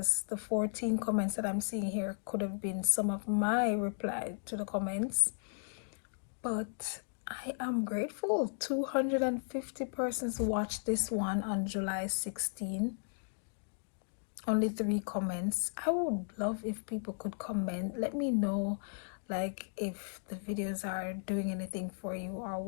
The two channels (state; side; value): silent; right; digital silence